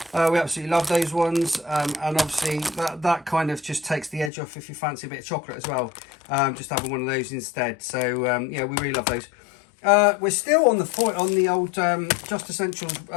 We absolutely love those ones, and obviously that kind of just takes the edge off if you fancy a bit of chocolate as well. Just having one of those instead. So yeah, we really love those. We're still on the foil, on the old Just Essentials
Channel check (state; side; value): drops out; right; at 4.3 s